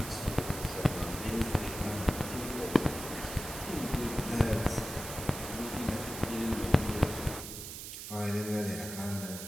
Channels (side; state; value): right; noise; hiss, 9 dB below the sound